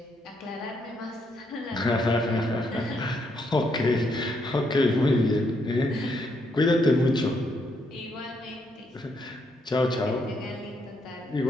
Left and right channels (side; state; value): both; normal; correlation 0.76